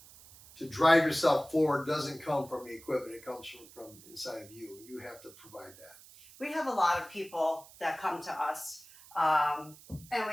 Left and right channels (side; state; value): right; noise; hiss, 21 dB below the sound